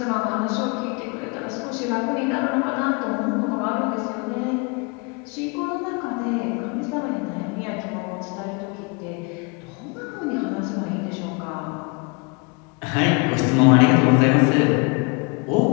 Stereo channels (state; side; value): quieter; right; 31.6 dB